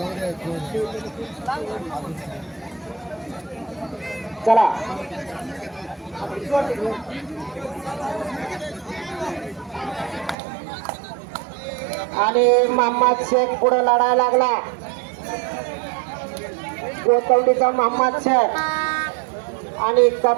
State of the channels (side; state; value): left; drops out; at 10.4 s